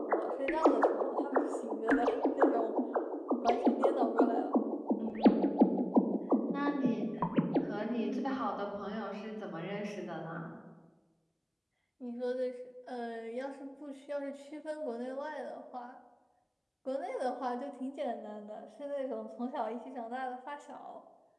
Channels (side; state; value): both; identical; correlation 1.00